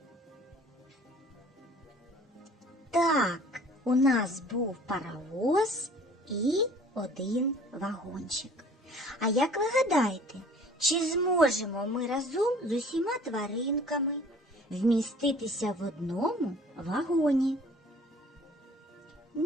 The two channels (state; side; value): normal; both; correlation 0.50